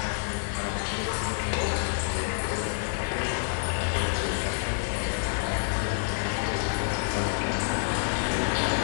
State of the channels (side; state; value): right; silent; digital silence